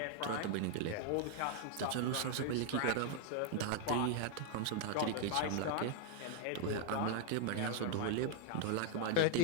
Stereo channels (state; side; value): different; both; correlation 0.00